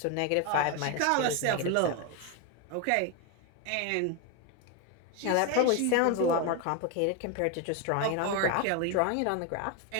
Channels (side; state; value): both; different; correlation 0.02